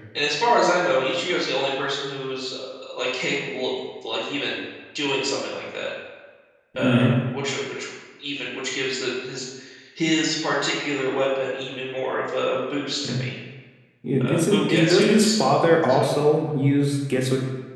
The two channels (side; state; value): both; identical; correlation 1.00